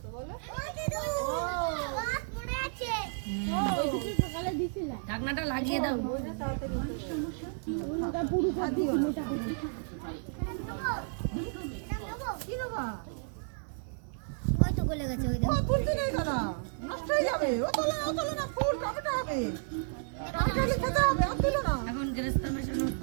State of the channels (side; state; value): left; silent; digital silence